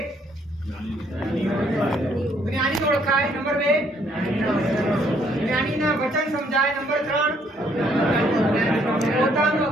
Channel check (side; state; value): both; normal; correlation 0.67